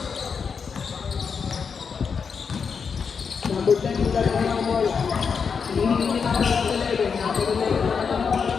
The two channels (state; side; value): quieter; right; 6.0 dB